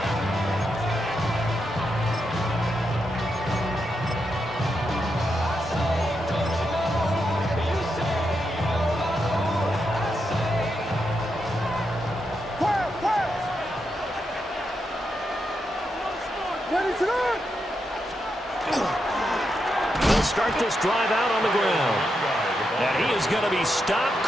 He'll start this drive out on the ground. And he is going to be stopped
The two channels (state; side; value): normal; both; correlation 0.84